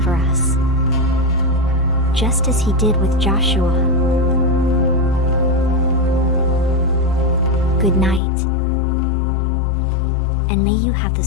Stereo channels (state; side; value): drops out; right; at 8.2 s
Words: us, just as He did with Joshua. Good night, and may you have the